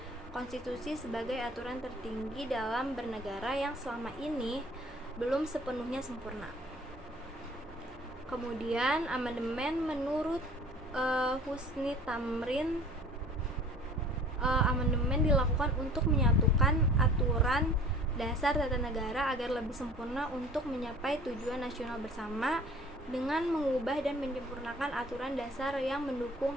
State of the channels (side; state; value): both; normal; correlation 0.47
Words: konstitusi sebagai aturan tertinggi dalam bernegara yang selama ini belum sepenuhnya sempurna. Kemudian amandemen menurut Husni Tamrin, amandemen dilakukan untuk menyatukan aturan dasar tata negara agar lebih sempurna untuk mencapai tujuan nasional bersama dengan mengubah dan menyempurnakan aturan dasar yang